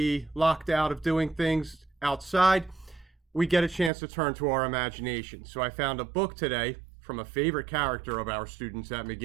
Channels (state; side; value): drops out; left; at 3.9 s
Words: locked out of doing things outside, we get a chance to turn to our imagination. So I found a book today from a favorite character of our students at